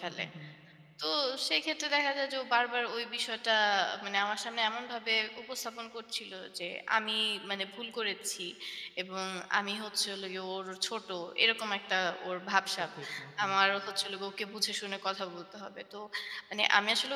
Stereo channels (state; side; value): identical; both; correlation 1.00